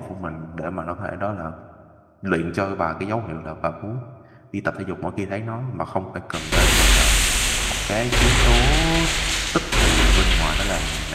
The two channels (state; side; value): identical; both; correlation 1.00